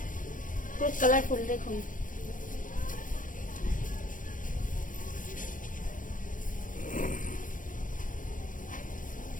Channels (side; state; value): right; late; 0.38 ms